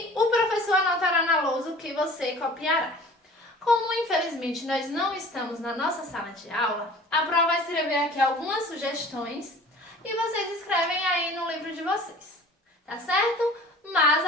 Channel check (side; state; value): both; normal; correlation 0.44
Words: o professor anotará na lousa o que você copiará. Como, infelizmente, nós não estamos na nossa sala de aula, a Pro vai escrever aqui algumas sugestões e vocês escrevem aí no livro de vocês, tá certo? Mas